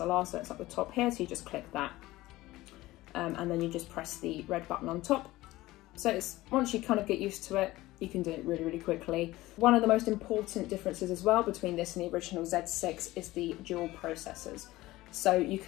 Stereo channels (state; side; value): quieter; right; 17.9 dB